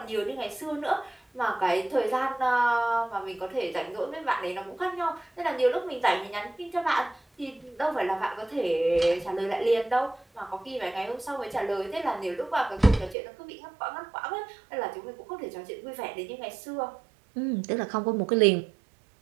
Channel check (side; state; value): left; drops out; at 13.2 s